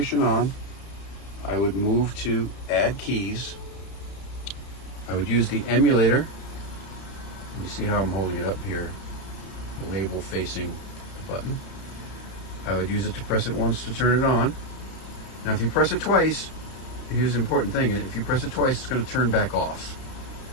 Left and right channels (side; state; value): right; late; 32 ms